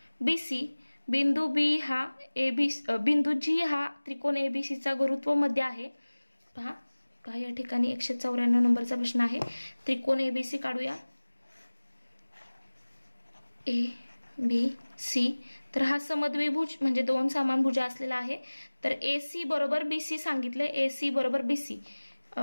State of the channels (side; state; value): both; inverted; correlation -1.00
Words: बीसी, बिंदू बी हा बिंदू जी हा त्रिकोण एबीसीचा गुरुत्व मध्य आहे. पहा या ठिकाणी 194 नंबरचा प्रश्न आहे. त्रिकोण एबीसी काढूया, ए बी सी, तर हा समद्विभुज म्हणजे दोन समानभुज असलेला आहे. तर एसी बरोबर बीसी सांगितलंय, एसी बरोबर बीसी,